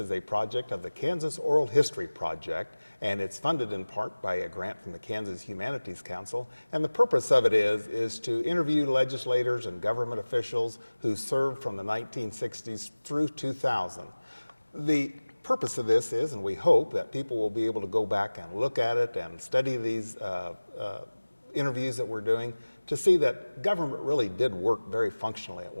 a project of the Kansas Oral History Project, and it's funded in part by a grant from the Kansas Humanities Council. And the purpose of it is to interview legislators and government officials who served from the 1960s through 2000. The purpose of this is, and we hope that people will be able to go back and look at it and study these interviews that we're doing to see that government really did work very functionally at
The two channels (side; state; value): both; inverted; correlation -1.00